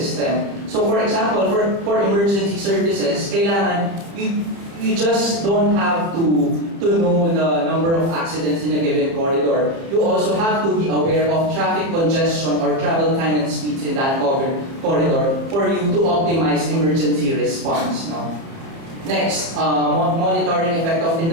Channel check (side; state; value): left; late; 30 ms